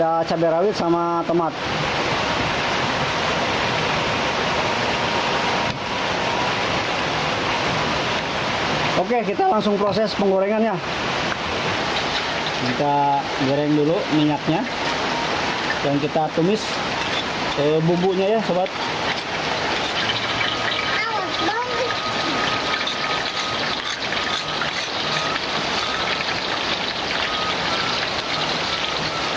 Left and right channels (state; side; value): identical; both; correlation 1.00